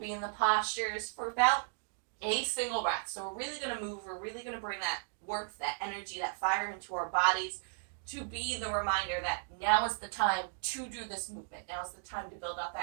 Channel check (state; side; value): silent; left; digital silence